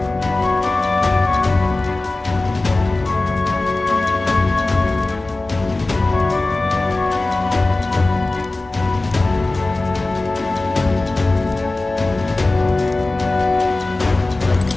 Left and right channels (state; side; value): quieter; right; 3.0 dB